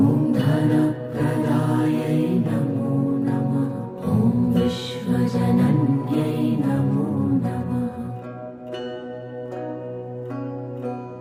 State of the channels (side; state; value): both; identical; correlation 1.00